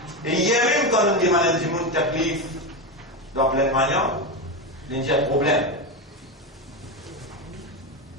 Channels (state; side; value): normal; both; correlation 0.14